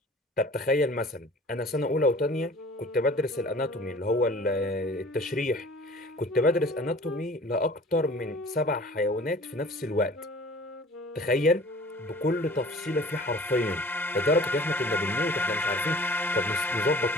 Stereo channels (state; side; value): normal; both; correlation 0.46